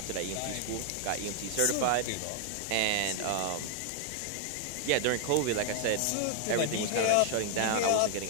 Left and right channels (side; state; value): both; different; correlation 0.00